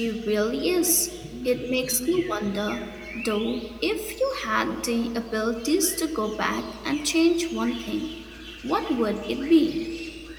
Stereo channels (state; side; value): identical; both; correlation 1.00